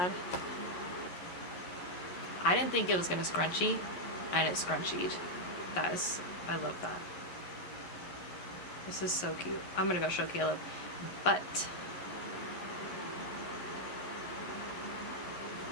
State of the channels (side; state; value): right; late; 11 ms